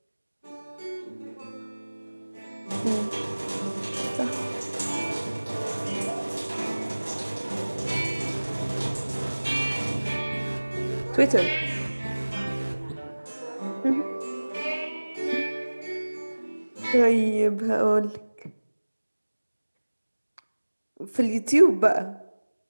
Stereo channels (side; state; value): both; inverted; correlation -1.00